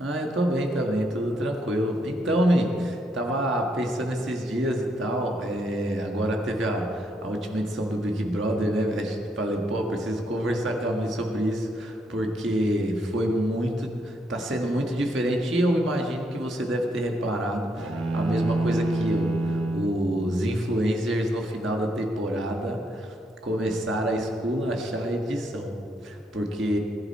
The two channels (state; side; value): normal; both; correlation 0.75